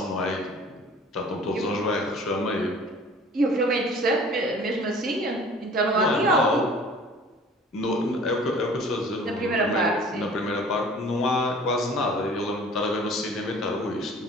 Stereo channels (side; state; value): both; normal; correlation 0.48